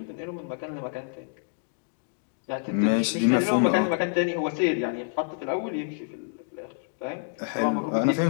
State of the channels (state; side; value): silent; right; digital silence